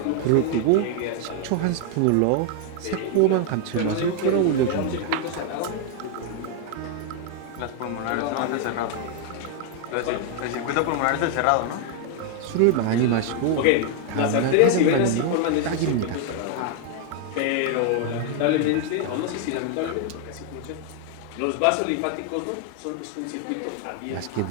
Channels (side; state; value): both; different; correlation 0.00